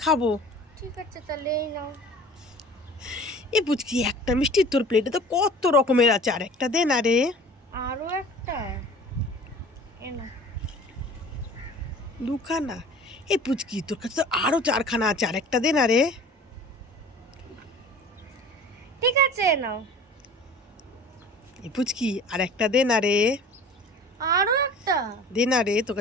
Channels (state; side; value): normal; both; correlation 0.44